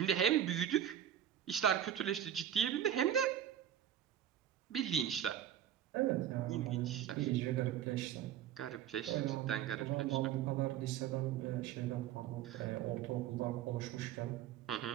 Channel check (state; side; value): quieter; left; 10.4 dB